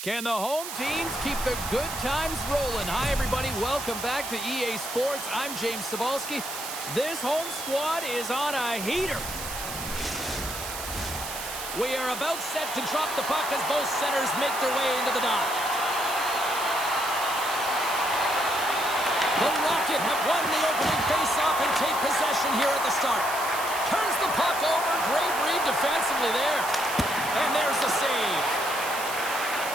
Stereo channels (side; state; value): right; noise; hiss, 8 dB below the sound